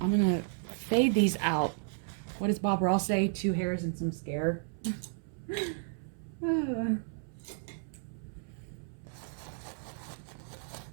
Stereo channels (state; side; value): silent; left; 56 dB below the other